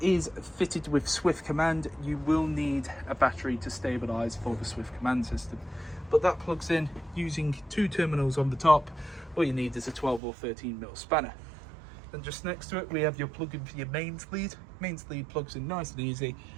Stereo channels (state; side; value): drops out; left; at 10.2 s